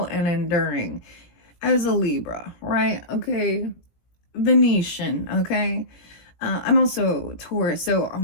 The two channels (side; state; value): right; late; 17 ms